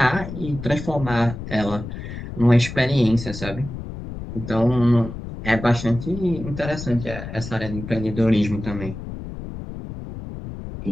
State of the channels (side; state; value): left; noise; rumble, 9 dB below the sound